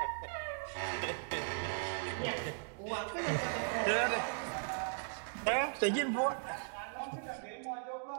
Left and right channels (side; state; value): left; silent; digital silence